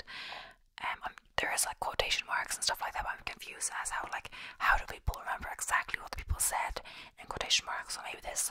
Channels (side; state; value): both; identical; correlation 1.00